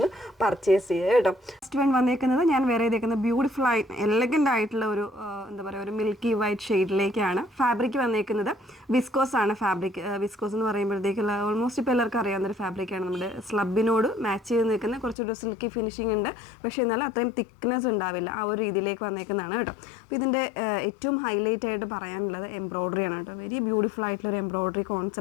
പർച്ചേസ് ചെയ്യുക കേട്ടോ. ഫസ്റ്റ് വൺ വന്നേക്കുന്നത് ഞാൻ വേറെ ചെയ്തേക്കുന്നത് ബ്യൂട്ടിഫുൾ ആയിട്ട് എലഗൻ്റ് ആയിട്ടുള്ള ഒരു എന്താ പറയുക ഒരു മിൽക്കി വൈറ്റ് ഷെയ്ഡിലേക്കാണ്. ഫാബ്രിക് വന്നേക്കുന്നത് വിസ്കോസ് ആണ്. ഫാബ്രിക് വിസ്കോസ് എന്ന് പറയുമ്പോഴത്തേക്കുള്ള ഓൾമോസ്റ്റ് ഇപ്പോൾ എല്ലാവർക്കും അറിയാവുന്നൊരു ഫാബ്രിക്കാണ്. നമ്മുടെ സ്ലബിനോട് മാച്ച് ചെയ്ത് നിൽക്കുന്ന കുറച്ചൊരു സിൽക്കി ഫിനിഷിംഗ് ഉണ്ട്, പക്ഷേ എന്നാലും അത്രയും തിക്നെസ് ഉണ്ടാവില്ല. ആ ഒരു രീതിയിലേക്ക് വന്നേക്കുന്നതാണ് കേട്ടോ. അപ്പോൾ ഇതിൻ്റെ ഏറ്റവും ഹൈലൈറ്റ് ആയിട്ട് പറയാനുള്ളത് എംബ്രോയ്ഡറിയാണ് കേട്ടോ. വെരി ബ്യൂട്ടിഫുൾ ആയിട്ടുള്ള ഒരു എംബ്രോയ്ഡറി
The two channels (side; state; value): right; drops out; at 15.2 s